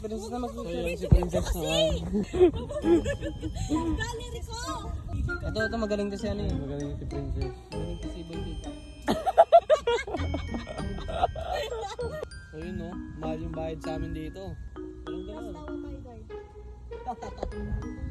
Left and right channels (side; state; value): both; identical; correlation 1.00